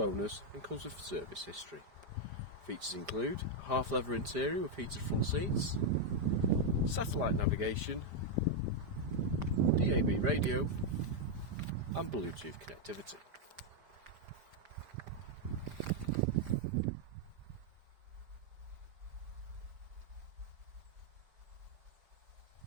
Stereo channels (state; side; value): late; left; 5.0 ms